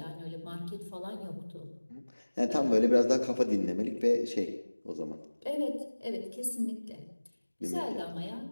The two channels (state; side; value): inverted; both; correlation -1.00